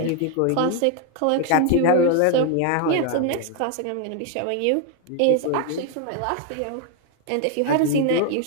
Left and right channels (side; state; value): both; different; correlation 0.01